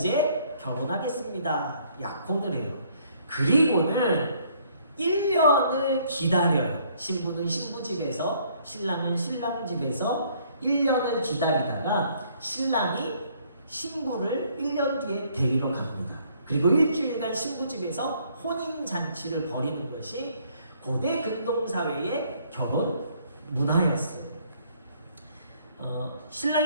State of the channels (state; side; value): inverted; both; correlation -0.64